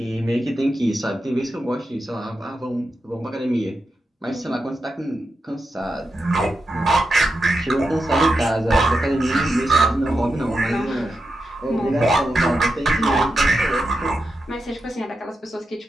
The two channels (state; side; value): normal; both; correlation 0.88